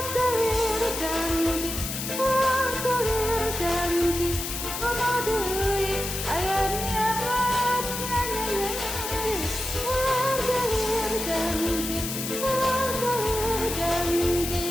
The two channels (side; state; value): left; noise; hiss, 5 dB below the sound